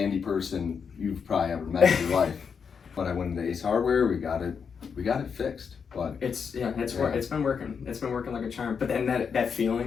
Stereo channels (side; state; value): right; quieter; 6.3 dB